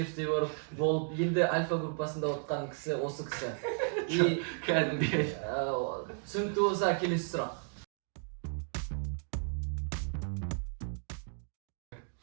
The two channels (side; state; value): left; silent; 55 dB below the other